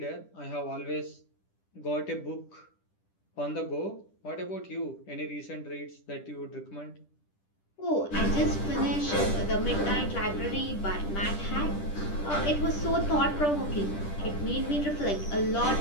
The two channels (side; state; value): right; late; 10 ms